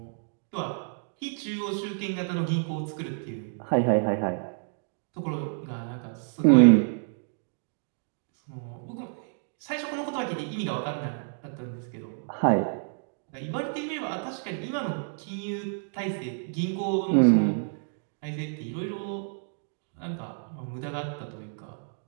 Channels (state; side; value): silent; left; digital silence